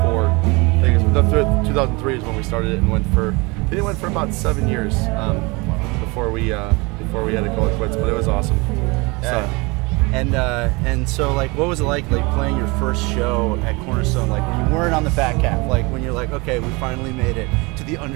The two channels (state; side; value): quieter; left; 26.4 dB